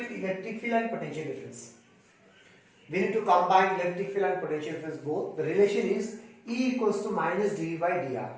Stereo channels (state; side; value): identical; both; correlation 1.00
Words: electric field and potential difference. We need to combine electric field and potential difference both. The relation is E equals to minus dV by dr.